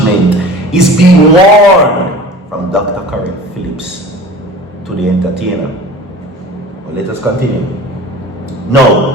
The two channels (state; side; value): normal; both; correlation 0.40